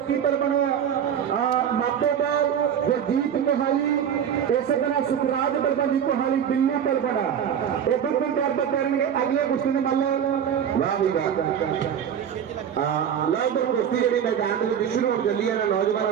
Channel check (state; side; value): quieter; left; 8.6 dB